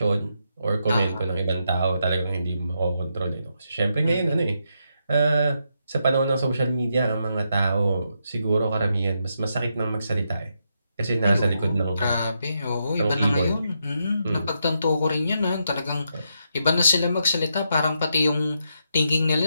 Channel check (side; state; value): both; inverted; correlation -0.81